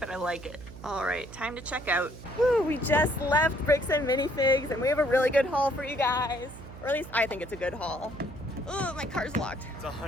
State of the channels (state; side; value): noise; right; hum, 15 dB below the sound